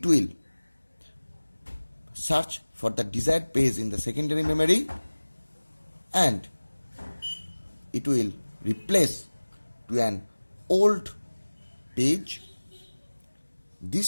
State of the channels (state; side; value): inverted; both; correlation -1.00